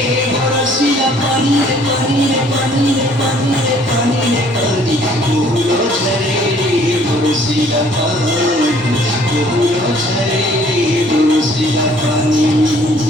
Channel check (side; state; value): both; normal; correlation 0.59